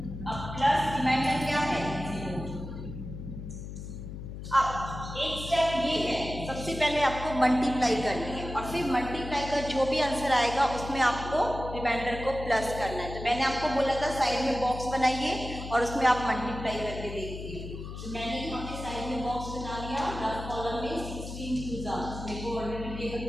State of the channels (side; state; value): left; noise; hum, 9 dB below the sound